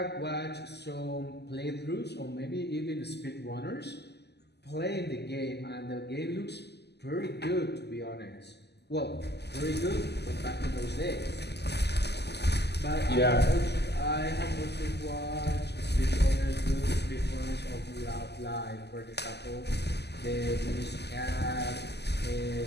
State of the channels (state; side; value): late; right; 0.49 ms